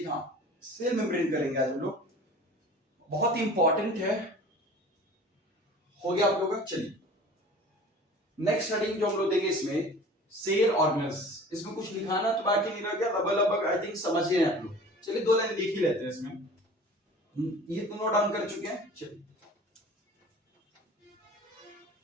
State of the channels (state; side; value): normal; both; correlation 0.43